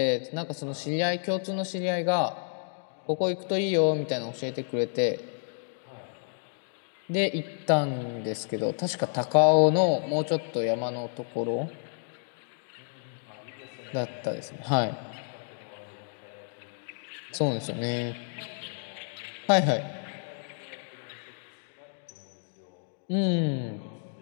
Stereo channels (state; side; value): silent; right; digital silence